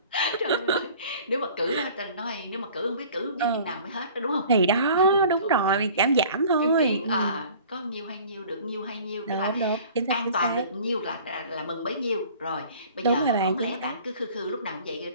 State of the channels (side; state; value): both; inverted; correlation -0.48